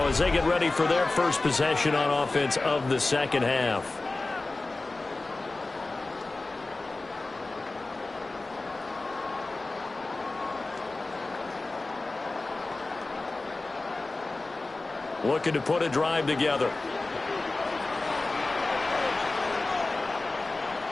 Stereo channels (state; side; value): quieter; right; 3.2 dB